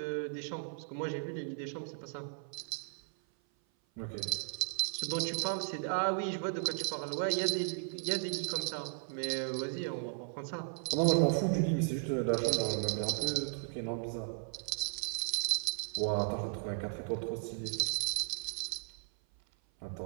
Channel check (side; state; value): left; silent; 54 dB below the other